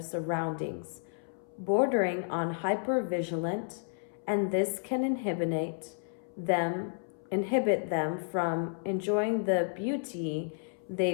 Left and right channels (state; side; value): silent; right; 57 dB below the other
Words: bordering on hyper-vigilant, and this can inhibit them from enjoying the beauty